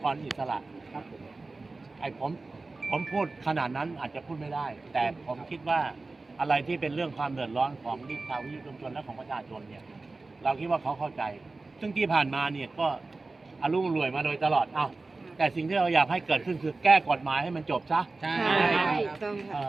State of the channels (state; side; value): quieter; left; 3.5 dB